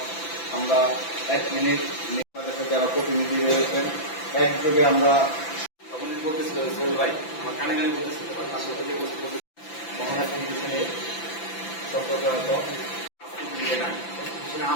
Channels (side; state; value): right; late; 5.9 ms